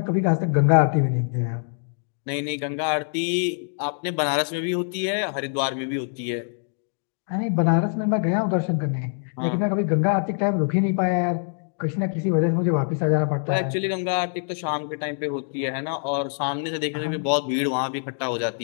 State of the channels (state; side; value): silent; right; digital silence